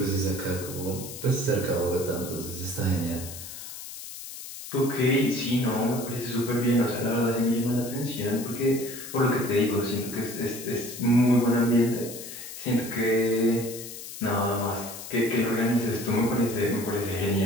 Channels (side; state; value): left; noise; hiss, 11 dB below the sound